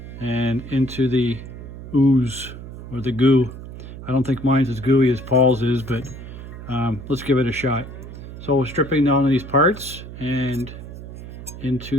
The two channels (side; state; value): right; noise; hum, 12 dB below the sound